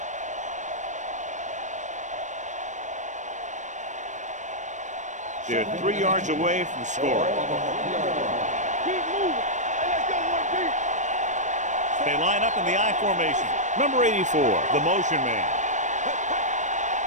They're 3 yards away from scoring. Keep moving. Hey, let's go one deep. They line up in the I formation. Number 84, the motion man.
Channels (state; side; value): late; left; 0.35 ms